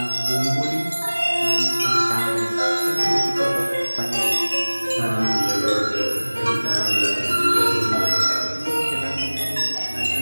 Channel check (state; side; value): inverted; both; correlation -1.00